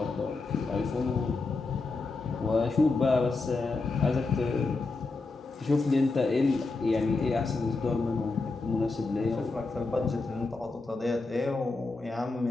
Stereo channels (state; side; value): quieter; right; 3.7 dB